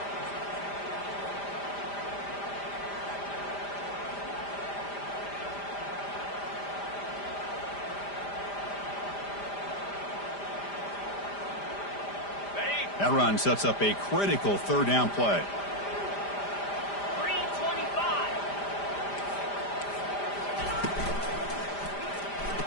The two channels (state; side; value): late; right; 5.0 ms